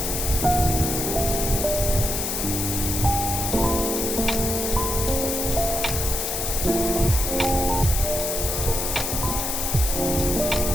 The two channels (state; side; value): noise; left; hiss, 1 dB below the sound